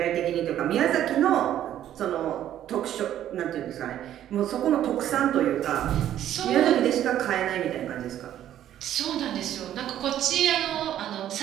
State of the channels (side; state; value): left; quieter; 11.6 dB